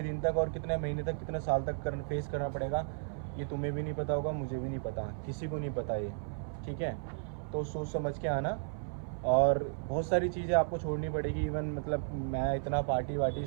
दिन तक और कितने महीने तक, कितने साल तक फेस करना पड़ेगा, ये तुम्हें भी नहीं पता होगा, मुझे भी नहीं पता, किसी को नहीं पता ये, ठीक है। तो सोच समझ के आना, और बहुत सारी चीज़ें आपको छोड़नी पड़ेगी। इवन मतलब मैं इतना पार्टी वार्टी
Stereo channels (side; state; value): left; silent; 55 dB below the other